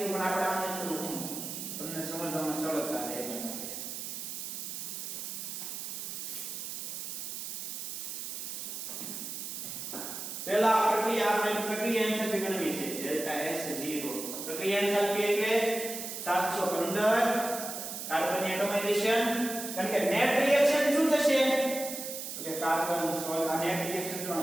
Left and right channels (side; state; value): right; noise; hiss, 6 dB below the sound